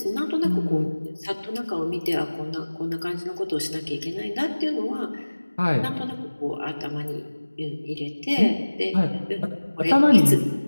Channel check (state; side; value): inverted; both; correlation -1.00